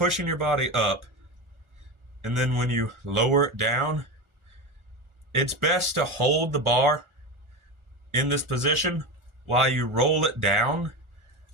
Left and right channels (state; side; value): late; left; 1.4 ms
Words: your body up and then when you lower it down, it's best to hold the bar in this position while you roll it down